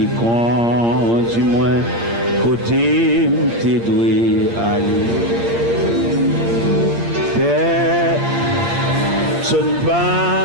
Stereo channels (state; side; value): late; left; 8.7 ms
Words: conduit moins, côté t'es doué aller. Père, sonne